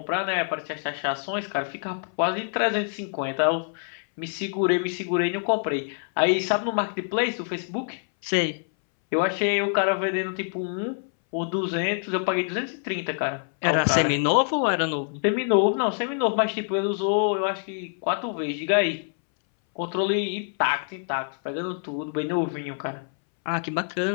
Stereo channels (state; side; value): silent; right; 61 dB below the other